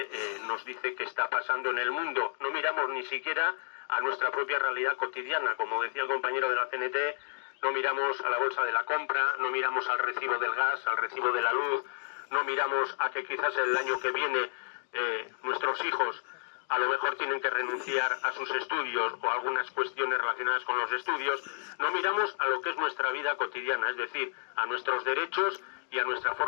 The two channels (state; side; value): silent; right; digital silence